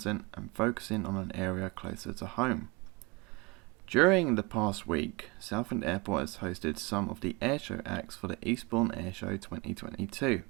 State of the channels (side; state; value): left; quieter; 26.4 dB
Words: and focusing on an area closer to home. During the past week, Southend Airport has hosted some of the airshow acts for the Eastbourne Airshow 2022.